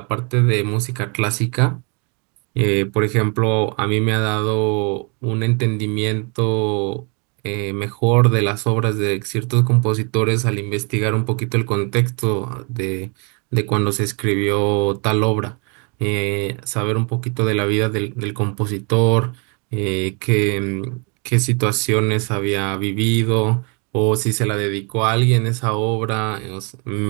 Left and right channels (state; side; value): quieter; left; 34.7 dB